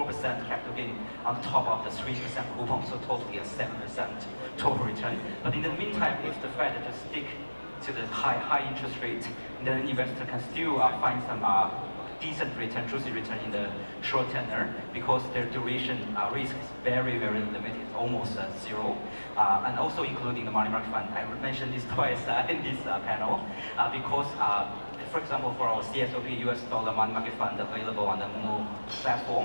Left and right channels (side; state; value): both; inverted; correlation -1.00